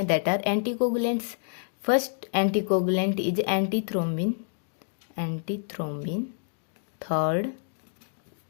that are anticoagulants. First anticoagulant is antithrombin, third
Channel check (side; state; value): right; silent; digital silence